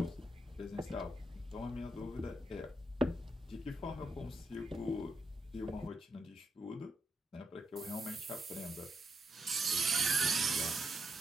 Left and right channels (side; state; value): both; normal; correlation 0.80